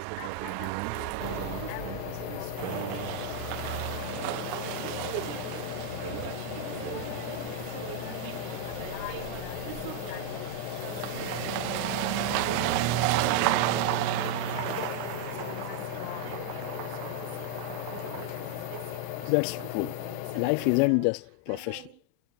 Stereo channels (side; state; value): both; different; correlation 0.00